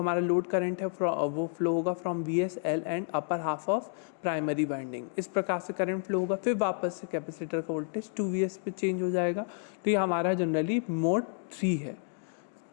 लोड करंट है वो फ्लो होगा from VSL and upper half of primary winding. इस प्रकार से करंट फ्लो होगा, फिर वापस से कैपेसिटर का वोल्टेज 2Vs पे चेंज हो जाएगा। तो ये हमारा जनरली मोड 3 है।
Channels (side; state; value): right; silent; digital silence